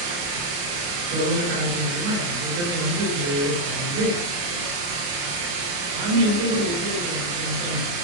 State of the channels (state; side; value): late; left; 29 ms